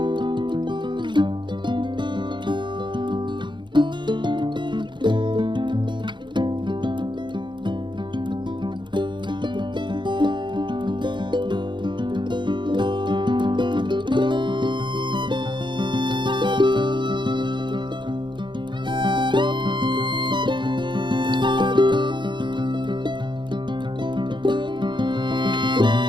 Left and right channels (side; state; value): left; late; 0.23 ms